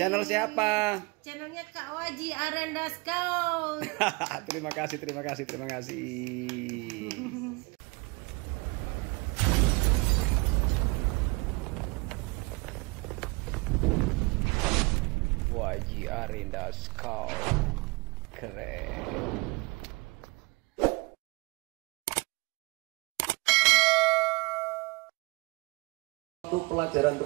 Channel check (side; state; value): left; quieter; 26.1 dB